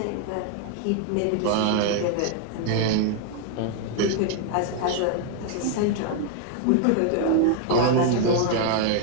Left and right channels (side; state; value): both; different; correlation 0.00